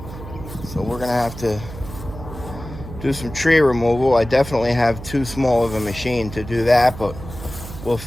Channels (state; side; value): noise; right; hum, 12 dB below the sound